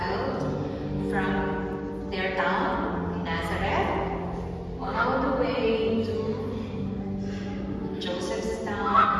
from their town, Nazareth, all the way to Joseph's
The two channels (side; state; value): both; identical; correlation 1.00